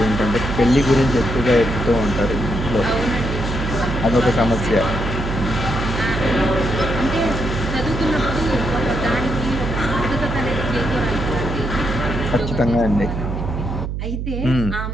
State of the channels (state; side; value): noise; right; hum, 4 dB below the sound